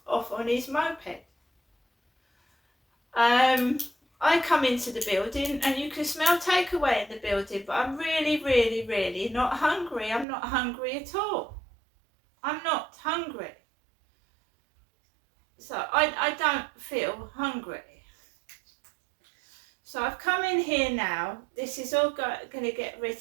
off on his moped. I come into the building and you can smell takeaway in the building, but I'm really, really, really not hungry. I'm not hungry at all. I'm not hungry. So I don't feel hungry. So I've come in here now. This is all going to get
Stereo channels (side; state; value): left; drops out; at 10.2 s